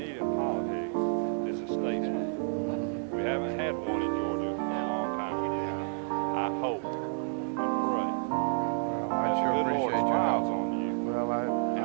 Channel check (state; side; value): silent; left; digital silence